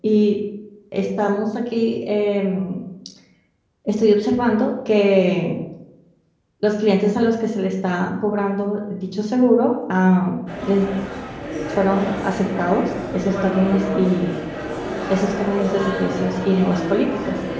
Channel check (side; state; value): both; identical; correlation 1.00